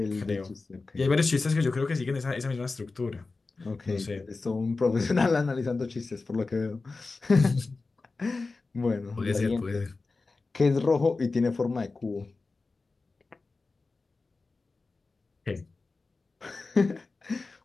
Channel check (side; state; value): right; quieter; 3.8 dB